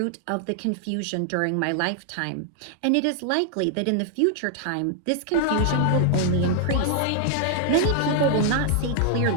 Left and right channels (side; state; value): both; different; correlation 0.00